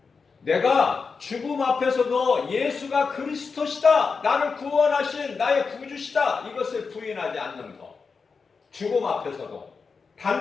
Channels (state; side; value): quieter; right; 5.0 dB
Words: 내가 죽음 앞에서도 예수가 그리스도시다. 나를 구원하신 나의 구주시다. 이것을 부인하지 않는 것. 죽음 앞에서도